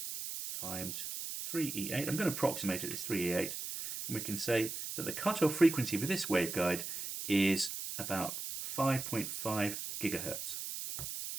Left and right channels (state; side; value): noise; right; hiss, 6 dB below the sound